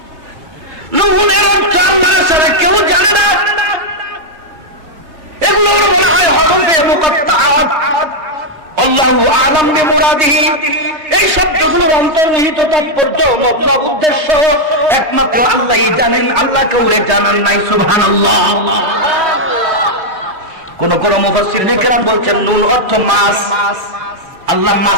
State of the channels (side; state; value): left; late; 3.3 ms